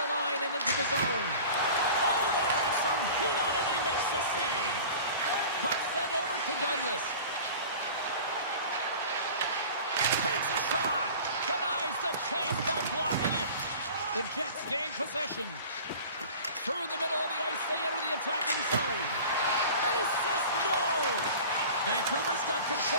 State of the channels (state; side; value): inverted; both; correlation -0.40